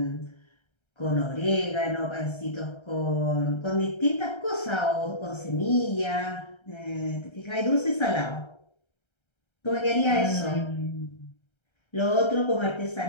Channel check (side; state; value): right; late; 1.3 ms